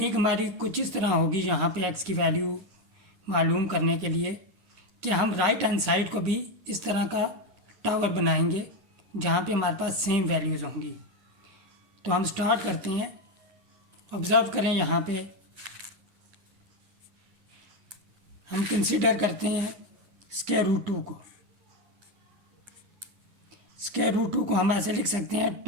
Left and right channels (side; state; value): left; late; 10 ms